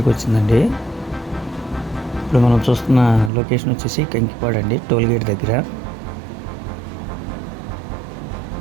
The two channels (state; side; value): drops out; left; at 3.3 s